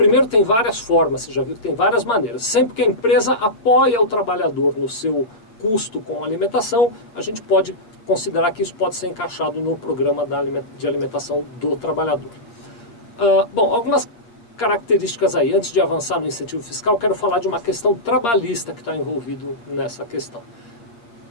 tem várias formas, você já viu que tem várias maneiras. Sempre que a empresa apoia o trabalhador no seu custo com a alimentação, a gente pode considerar que isso pode ser encaixado no programa de alimentação do trabalhador. Bom, algumas características aí. Antes de avançar no incentivo fiscal, quero falar de uma questão trabalhista que está envolvido nessa questão.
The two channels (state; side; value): late; right; 8.7 ms